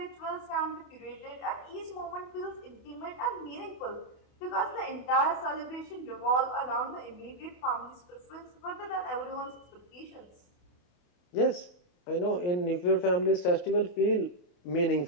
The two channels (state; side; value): late; right; 28 ms